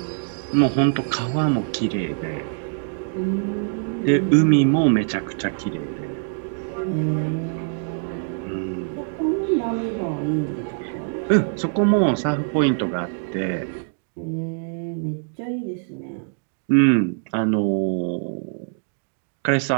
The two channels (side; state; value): left; silent; digital silence